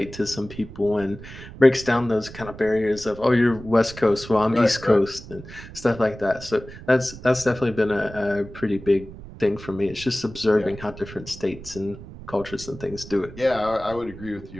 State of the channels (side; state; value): right; noise; rumble, 15 dB below the sound